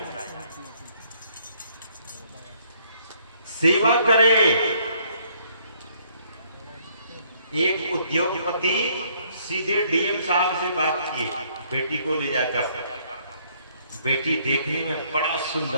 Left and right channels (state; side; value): inverted; both; correlation -0.66